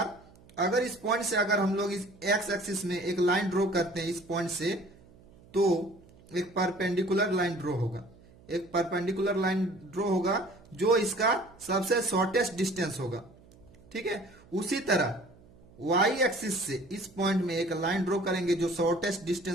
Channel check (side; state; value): right; noise; hum, 25 dB below the sound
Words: अगर इस पॉइंट से अगर हम लोग इस x एक्सिस में एक लाइन ड्रॉ करते हैं इस पॉइंट से, तो एक परपेंडिकुलर लाइन ड्रॉ होगा। एक परपेंडिकुलर लाइन ड्रॉ होगा जो इसका सबसे शॉर्टेस्ट डिस्टेंस होगा, ठीक है। उसी तरह y एक्सिस से इस पॉइंट में एक लाइन ड्रॉ करेंगे जो शॉर्टेस्ट